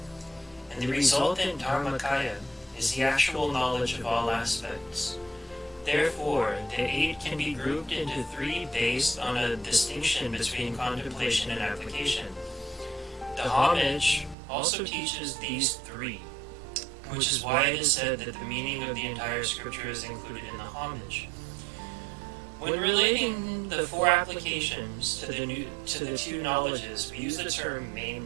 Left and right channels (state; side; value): drops out; left; at 14.4 s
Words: and the resultant dharmakaya is the actual knowledge of all aspects. Therefore, the 8 can be grouped into 3 based on a distinction between contemplation and application. The homage also teaches these 3, which is why it is said that the meaning of the entire scripture is included in the homage. When relating the 4 applications to the 2 knowledges, we use the term